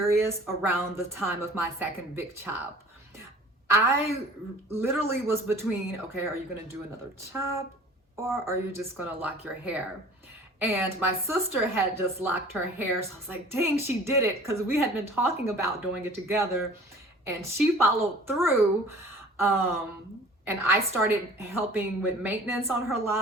around the time of my second big chop. I literally was between, okay, are you gonna do another chop or are you just gonna lock your hair? And my sister had just locked her hair, so I was like, dang, she did it, because we had been talking about doing it together, and she followed through. And I started helping with maintenance on her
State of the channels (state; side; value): normal; both; correlation 0.47